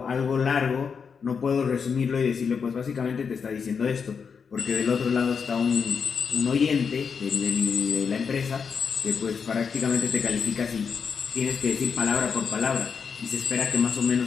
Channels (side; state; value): right; quieter; 6.1 dB